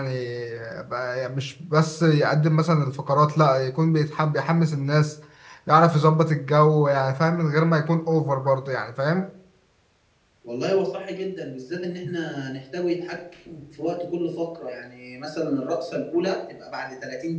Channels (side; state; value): both; identical; correlation 1.00